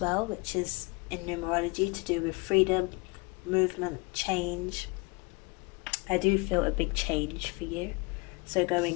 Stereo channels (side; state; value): right; quieter; 28.3 dB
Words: well, which is in numerology to do with freedom, movement, change. I do feel a big change for you. So